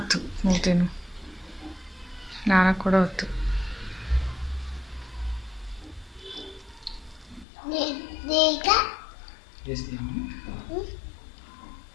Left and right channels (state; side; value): drops out; right; at 7.5 s